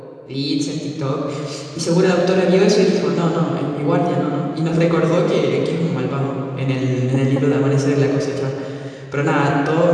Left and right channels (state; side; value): identical; both; correlation 1.00